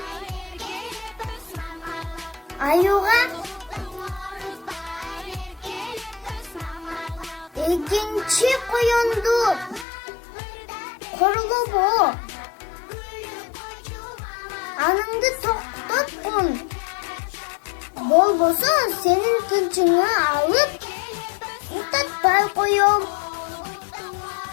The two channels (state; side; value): drops out; right; at 9.9 s